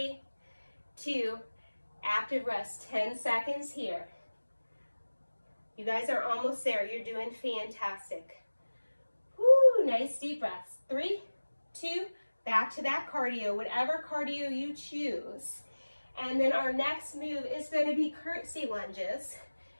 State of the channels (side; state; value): both; inverted; correlation -1.00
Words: 2, active rest, 10 seconds here. You guys are almost there. You're doing fantastic. Woo, nice deep breaths. 3, 2, back to that cardio, whatever cardio you choose. And then our next move is going to be curtsy lunges.